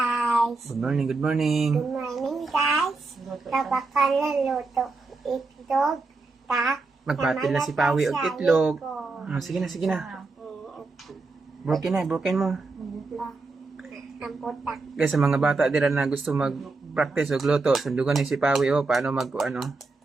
Good morning, good morning. Good morning guys! Kapag naluto itlog, Magpatil na si Pawi og itlog. Sige na, sige na. Broken mo. Ang putak. Guys, sa mga bata dira na gusto mag-practice og luto, sundugan ni si Pawi paano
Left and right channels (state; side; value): quieter; left; 3.7 dB